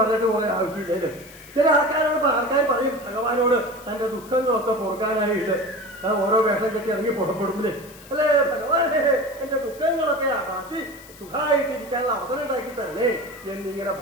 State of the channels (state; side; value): noise; left; hiss, 21 dB below the sound